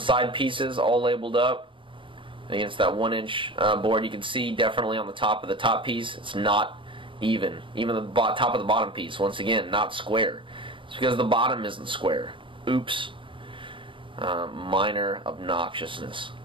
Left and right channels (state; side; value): late; left; 0.25 ms